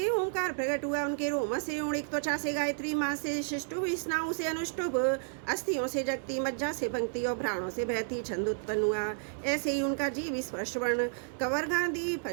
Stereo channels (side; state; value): left; silent; digital silence